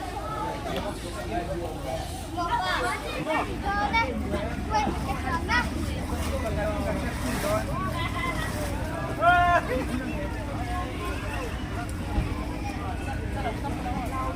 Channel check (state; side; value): identical; both; correlation 1.00